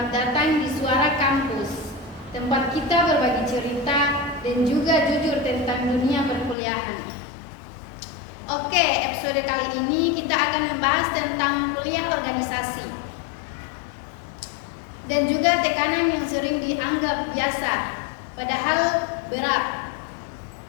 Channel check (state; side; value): drops out; right; at 6.6 s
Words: datang di Suara Kampus, tempat kita berbagi cerita dan juga jujur tentang dunia perkuliahan. Oke, episode kali ini kita akan membahas tentang kuliah organisasi dan juga tekanan yang sering dianggap biasa, padahal berat.